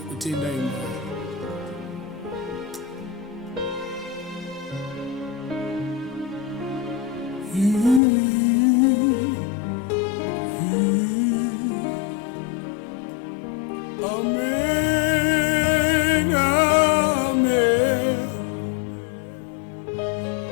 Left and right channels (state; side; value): drops out; right; at 8.0 s